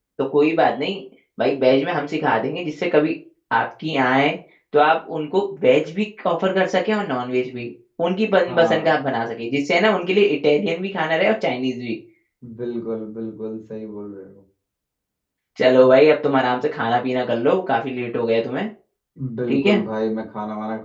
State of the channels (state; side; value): identical; both; correlation 1.00